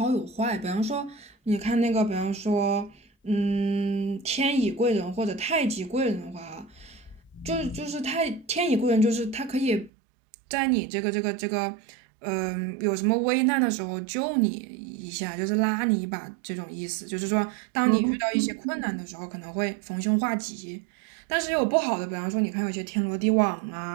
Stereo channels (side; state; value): left; drops out; at 9.9 s